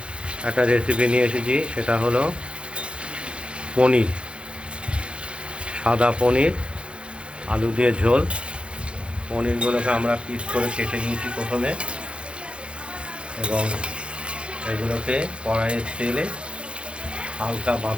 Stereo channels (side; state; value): left; late; 0.058 ms